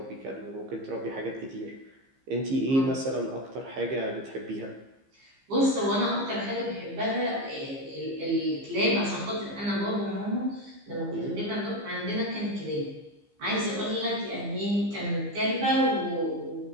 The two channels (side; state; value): left; late; 15 ms